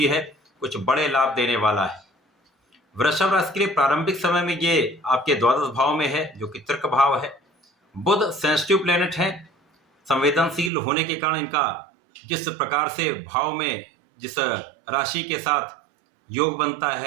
है, कुछ बड़े लाभ देने वाला है। वृषभ राशि के लिए प्रारंभिक समय में ये आपके द्वादश भाव में है, जो कि तर्क भाव है। बुध सेंसिटिव प्लेनेट है, संवेदनशील होने के कारण इनका जिस प्रकार से भाव में जिस राशि के साथ योग बनता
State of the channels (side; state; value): left; drops out; at 10.7 s